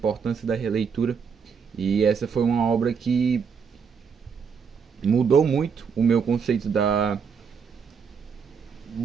da releitura e essa foi uma obra que mudou muito o meu conceito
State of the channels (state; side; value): quieter; left; 6.3 dB